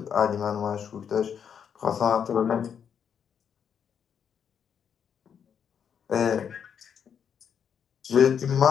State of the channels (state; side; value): quieter; right; 7.7 dB